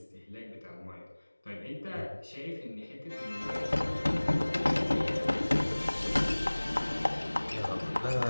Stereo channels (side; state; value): both; inverted; correlation -1.00